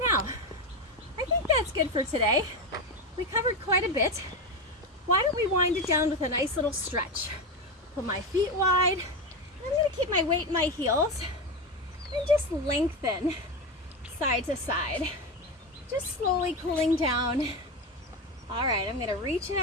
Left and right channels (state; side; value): normal; both; correlation 0.16